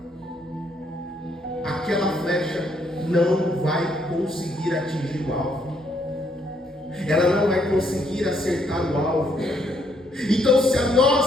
Aquela flecha não vai conseguir atingir o alvo. Ela não vai conseguir acertar o alvo. Então, se a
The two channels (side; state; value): both; normal; correlation 0.72